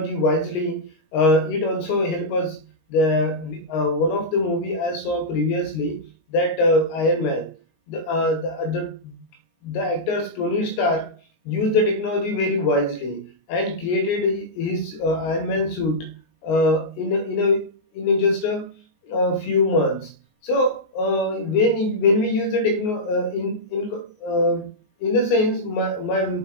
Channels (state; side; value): late; right; 19 ms